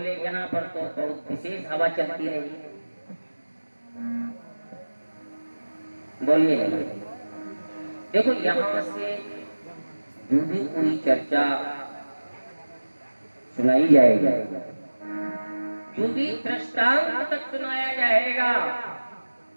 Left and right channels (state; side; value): inverted; both; correlation -1.00